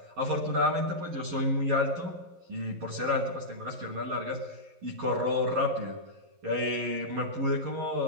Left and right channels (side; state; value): left; late; 11 ms